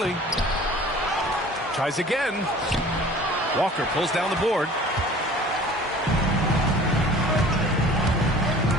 Tries again. Walker pulls down the board.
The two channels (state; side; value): normal; both; correlation 0.46